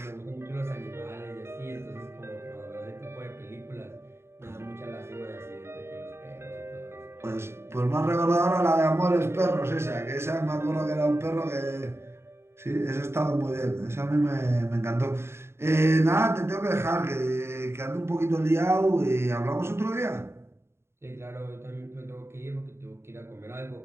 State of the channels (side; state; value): left; late; 0.12 ms